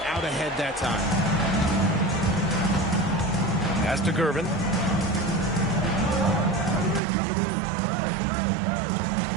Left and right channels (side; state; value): left; drops out; at 7.0 s